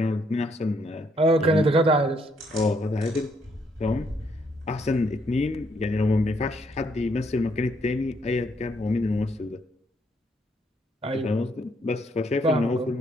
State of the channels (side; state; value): both; normal; correlation 0.72